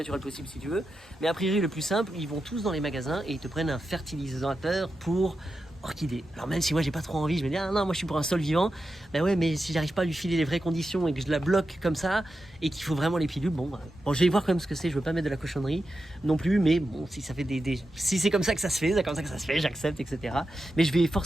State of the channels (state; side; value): normal; both; correlation 0.89